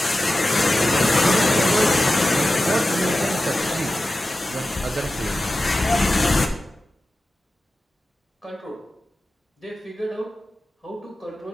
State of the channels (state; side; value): normal; both; correlation 0.94